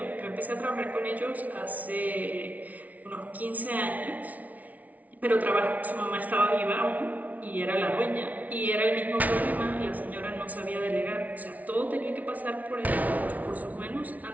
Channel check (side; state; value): left; late; 0.073 ms